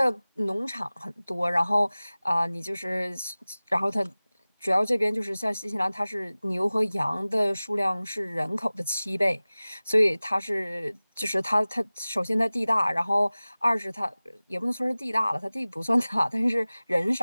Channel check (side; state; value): both; inverted; correlation -0.98